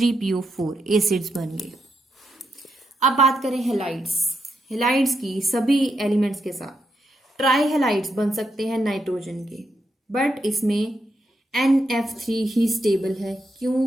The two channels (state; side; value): normal; both; correlation 0.82